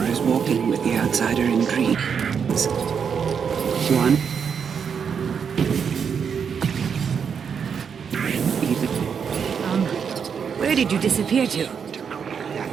Is walking with the outsider in dreams. One Where did you disappear to?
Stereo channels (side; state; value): left; quieter; 6.8 dB